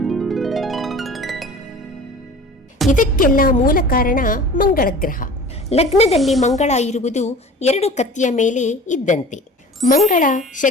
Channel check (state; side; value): normal; both; correlation 0.41